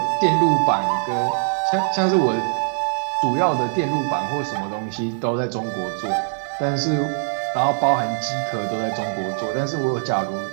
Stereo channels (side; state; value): left; silent; digital silence